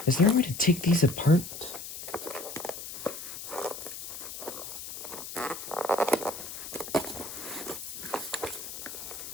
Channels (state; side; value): noise; left; hiss, 9 dB below the sound